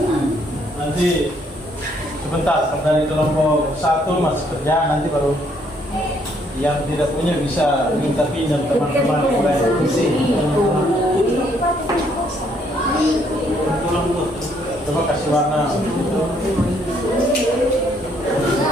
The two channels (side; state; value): both; normal; correlation 0.68